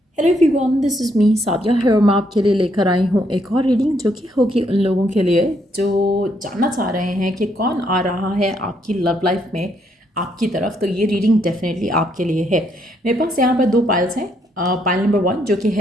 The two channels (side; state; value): both; normal; correlation 0.73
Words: Hello everyone, this is me Sadia है। मैं आपके लिए लेकर आई हूँ एक और रीडिंग जो कि होगी उन लोगों के लिए जो जानना चाह रहे हैं कि कौन आ रहा है आपकी लव लाइफ में आपकी तरफ। तो ये रीडिंग डेफिनेटली आपके लिए है। मेरे पास यहाँ पर दो पाइल्स हैं। पाइल नंबर 1 जो कि